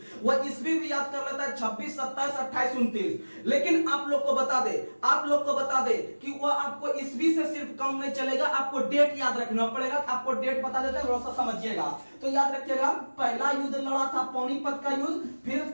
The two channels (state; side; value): inverted; both; correlation -1.00